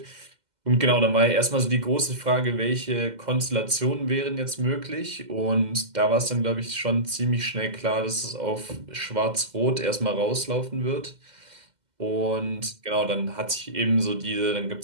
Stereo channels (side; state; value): left; late; 2.1 ms